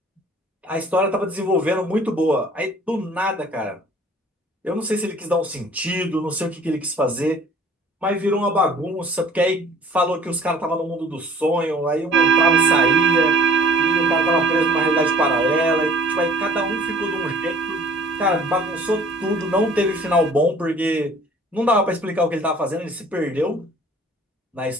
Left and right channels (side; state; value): both; normal; correlation 0.51